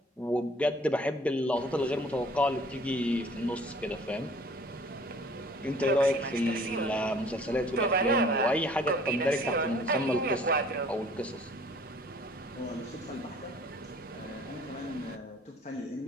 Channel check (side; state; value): both; normal; correlation 0.53